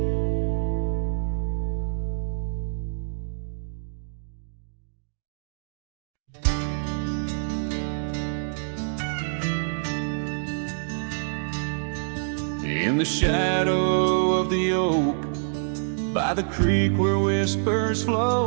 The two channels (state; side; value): silent; left; digital silence